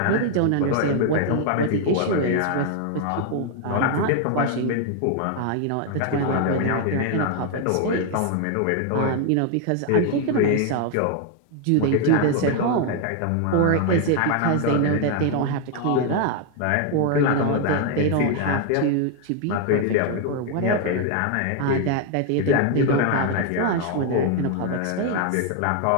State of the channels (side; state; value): both; different; correlation 0.00